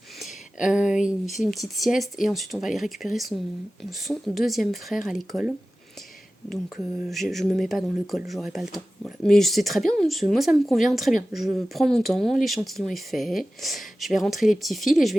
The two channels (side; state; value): both; normal; correlation 0.95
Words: Il fait une petite sieste et ensuite on va aller récupérer son deuxième frère à l'école. Donc je me mets pas dans le col, j'aurai pas le temps. Voilà. Mais c'est très bien, moi ça me convient très bien. Je prends mon temps, l'échantillon est fait. Je vais rentrer les petits fils et je vais